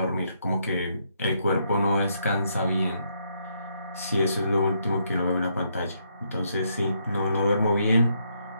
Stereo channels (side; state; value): both; inverted; correlation -0.75